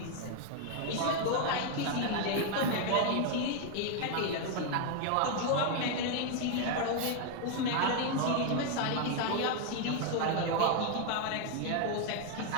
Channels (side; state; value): both; different; correlation 0.01